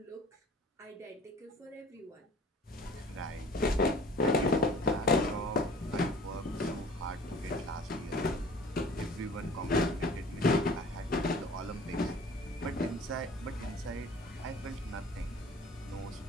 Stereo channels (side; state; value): both; normal; correlation 0.48